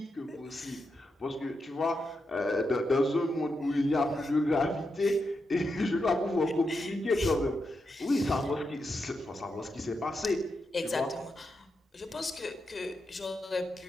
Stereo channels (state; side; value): normal; both; correlation 0.85